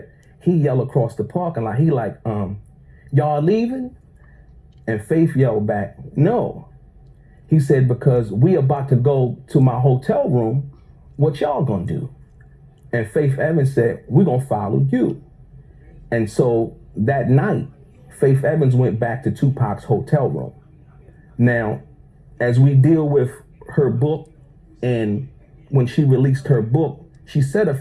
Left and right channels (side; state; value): both; identical; correlation 1.00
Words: he yelled across the parking lot, he like, y'all leaving? And Faith yelled back, no. He said, because we about to go to my hotel room, what y'all gonna do? And Faith Evans said, we're gonna follow you. And so that night, Faith Evans went back to Tupac's hotel room. Now, as we deal with her book, and when she released her book, she said a